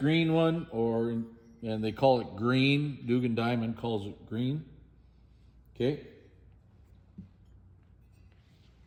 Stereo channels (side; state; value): both; identical; correlation 1.00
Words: one, and they call it green. Dugan Diamond calls it green. Okay.